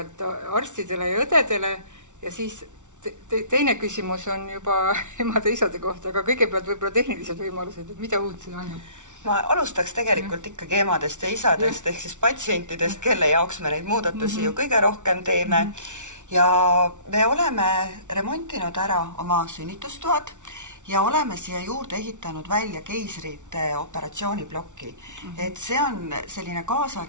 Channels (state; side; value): late; left; 0.86 ms